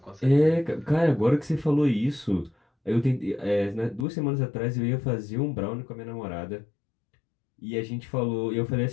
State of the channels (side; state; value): right; drops out; at 4.0 s